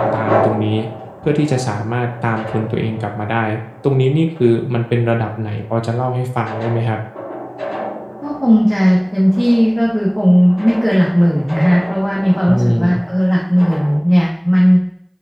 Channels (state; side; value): identical; both; correlation 1.00